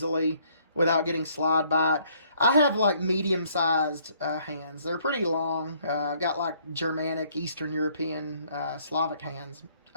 without getting slide by it. I have like medium-sized hands. They're pretty long. I've got like Germanic, Eastern European, Slavic hands.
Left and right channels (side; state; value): both; inverted; correlation -0.64